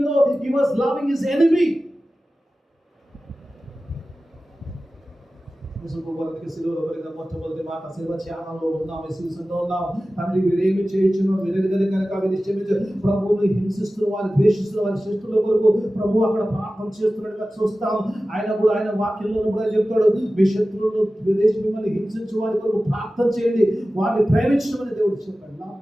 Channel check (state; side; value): normal; both; correlation 0.95